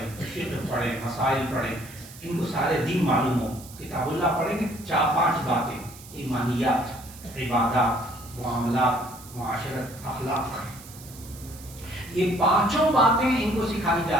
فقہ پڑھیں، مسائل پڑھیں، ان کو سارے دین معلوم ہو. کتاب اللہ پڑھیں گے 4-5 باتیں، ایمانیات، عبادات، معاملات، معاشرت، اخلاق، یہ 5 باتیں ان کو سکھائی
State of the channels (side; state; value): right; noise; hiss, 18 dB below the sound